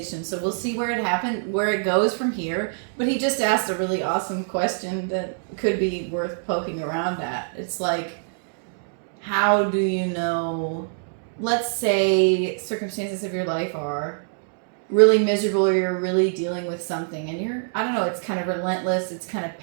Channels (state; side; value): silent; left; digital silence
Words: so we'll see where it goes from here. But he just asked a really awesome question that could be worth poking around at. It's like, how do you know, let's say circumstances of your life are really miserable, or you're really dealing with something and it's kind of relentless, it's kind of